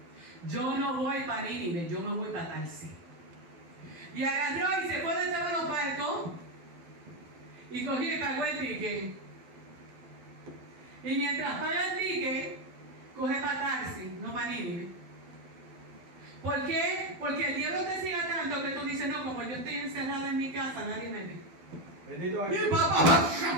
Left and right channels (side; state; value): left; late; 12 ms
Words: Yo no voy para Nínive, yo me voy para Tarsis. Y agarró y se fue detrás de los barcos y cogió y pagó el ticket. Y mientras paga el ticket, coge para Tarsis, no para Nínive. ¿Por qué? Porque el diablo te ciega tanto que tú dices, no, como yo estoy encerrada en mi casa, nadie me ve. Bendito Y Jesús.